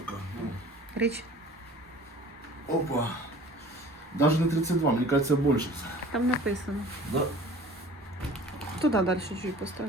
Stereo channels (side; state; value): both; normal; correlation 0.45